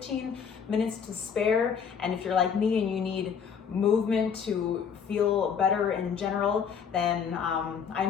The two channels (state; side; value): quieter; right; 6.9 dB